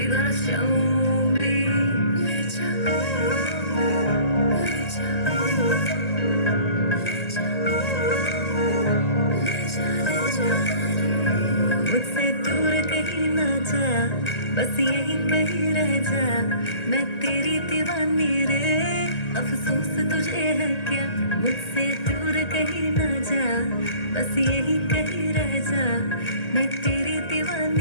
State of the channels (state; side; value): late; right; 1.9 ms